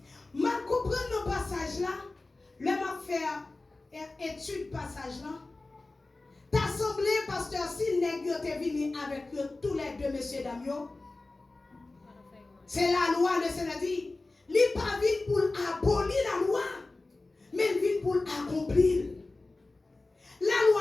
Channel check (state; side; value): quieter; right; 3.2 dB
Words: je comprends le passage là, je vais faire étude passage là. Ta pasteur, si nèg yo te venu avec eux, tous les deux, messieurs, dames, yo, c'est la loi, le Seigneur dit, il n'est pas venu pour abolir la loi, mais il vient pour accomplir. La loi